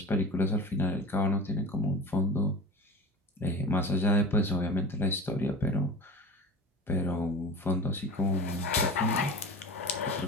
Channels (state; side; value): normal; both; correlation 0.33